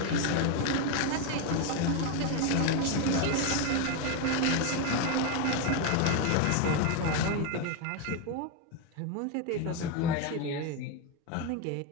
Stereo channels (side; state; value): both; different; correlation 0.02